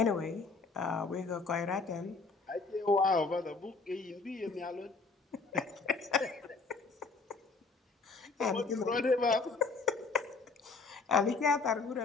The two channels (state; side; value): quieter; right; 4.1 dB